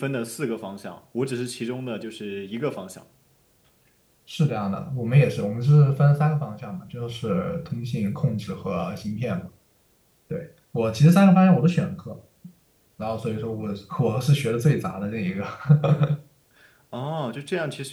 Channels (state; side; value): identical; both; correlation 1.00